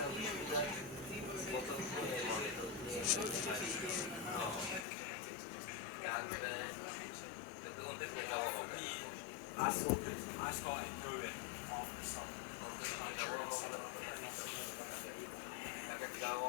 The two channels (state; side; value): drops out; right; at 4.9 s